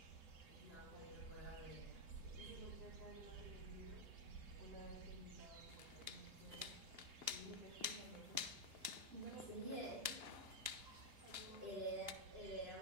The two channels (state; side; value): late; left; 2.9 ms